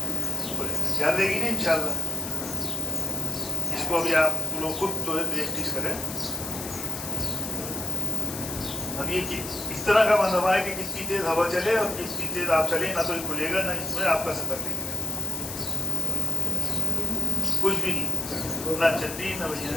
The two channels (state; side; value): noise; left; hiss, 9 dB below the sound